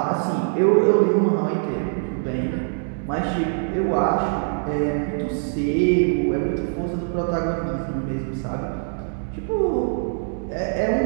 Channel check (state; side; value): silent; left; digital silence